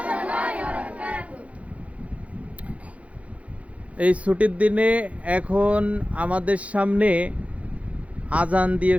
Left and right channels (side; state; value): left; late; 0.065 ms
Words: এই ছুটির দিনে এখন আমাদের সামনে আজান দিয়ে